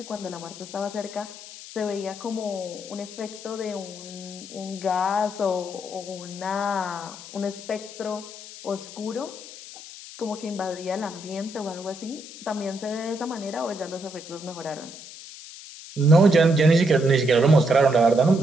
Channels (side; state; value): left; noise; hiss, 15 dB below the sound